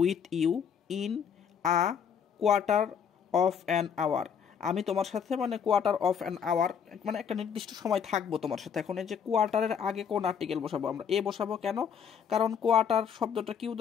with you in a quarter of an hour. আমি তোমার সাথে মানে কোয়ার্টার অফ অ্যান আওয়ার মানে একটা নির্দিষ্ট সময় থাকবো তোমার সাথে। এখন এই যে কোয়ার্টারের আগে কোন আর্টিকেল বসাবো, আমরা এ বসাবো কেন, কারণ কোয়ার্টার শব্দটা কিউ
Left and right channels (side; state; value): right; quieter; 7.4 dB